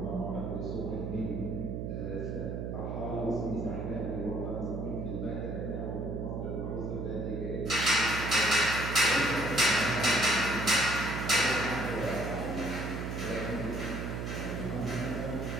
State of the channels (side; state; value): right; noise; hum, 3 dB below the sound